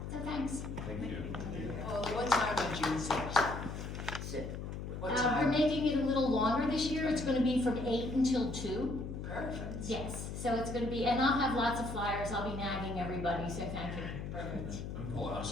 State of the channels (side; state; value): left; noise; hum, 6 dB below the sound